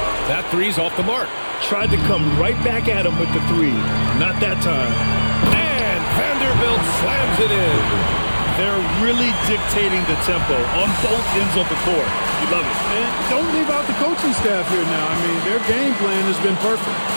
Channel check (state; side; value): inverted; both; correlation -1.00